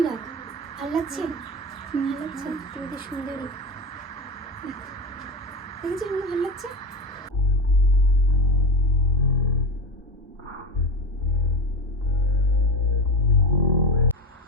রাখ। ভালো লাগছে? ভালো লাগছে? তুমি তো সুন্দরী। দেখেছিস মনে ভালো লাগছে?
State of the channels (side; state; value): both; normal; correlation 0.22